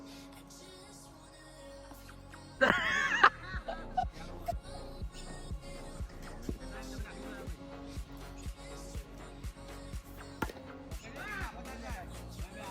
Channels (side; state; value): both; identical; correlation 1.00